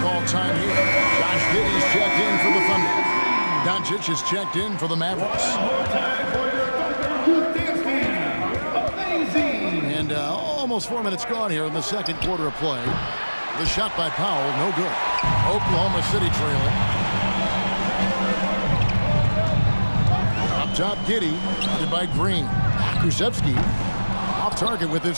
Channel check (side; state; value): both; inverted; correlation -1.00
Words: time here. Josh Giddey's checked in for the Thunder. Doncic is checked in for the Mavericks. And almost 4 minutes gone here in the second quarter of play. The shot by Powell, no good. Oklahoma City trailing. Up top, Giddey, guarded by Green. Pokuševski off target with